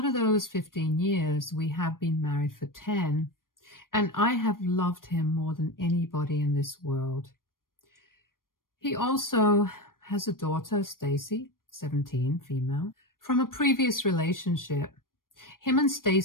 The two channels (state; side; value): late; right; 0.91 ms